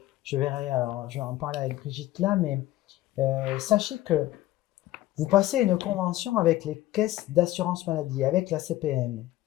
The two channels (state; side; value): quieter; right; 15.8 dB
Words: vais en parler avec Brigitte là, mais sachez que vous passez une convention avec les caisses d'assurance maladie, avec la CPM.